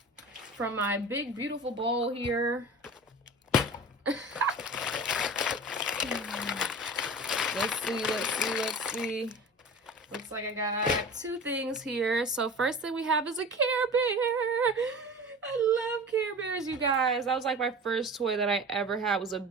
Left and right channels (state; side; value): normal; both; correlation 0.36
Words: from my big, beautiful bowl here. Let's see. Looks like I got 2 things here. So first thing we have is a Care Bear. I love Care Bears, you guys. That was like my first toy that I ever had, was a